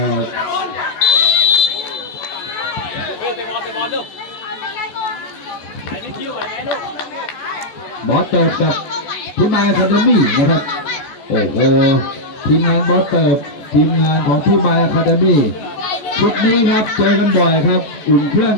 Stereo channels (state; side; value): late; right; 14 ms